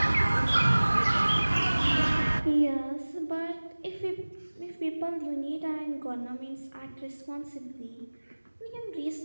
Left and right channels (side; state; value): both; inverted; correlation -1.00